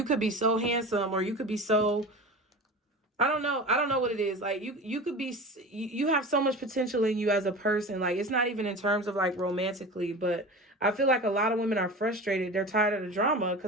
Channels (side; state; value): both; normal; correlation 0.32